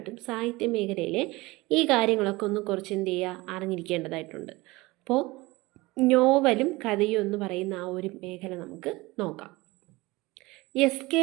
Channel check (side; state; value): left; quieter; 21.5 dB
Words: സാഹിത്യ മേഖലയിലെ ഈ കാര്യങ്ങളൊക്കെ ഒന്ന് കുറച്ച് എന്ത് ചെയ്യുക അറിഞ്ഞിരിക്കേണ്ടതായിട്ടുണ്ട്. അപ്പോൾ നോവലും കഥയും എന്ന് പറയുന്ന ആ ഒരു മേഖല നമുക്ക് നോക്കാം. SK